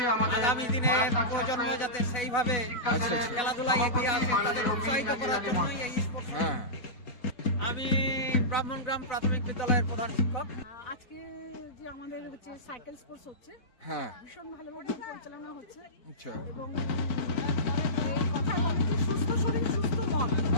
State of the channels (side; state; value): right; late; 4.0 ms